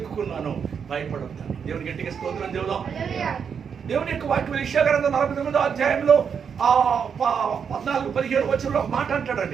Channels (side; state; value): left; quieter; 6.9 dB